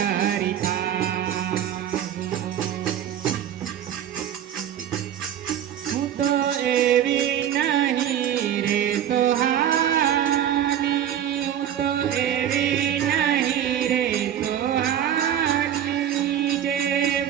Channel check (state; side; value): quieter; left; 10.2 dB